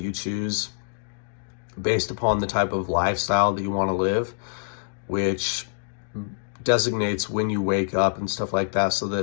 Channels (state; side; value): silent; right; digital silence